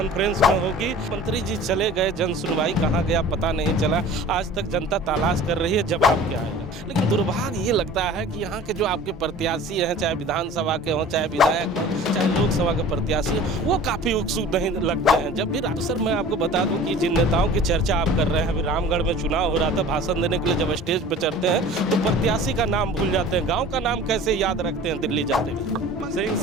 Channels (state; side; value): normal; both; correlation 0.43